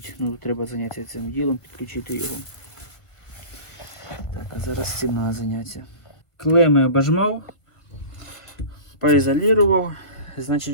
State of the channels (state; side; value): late; right; 1.5 ms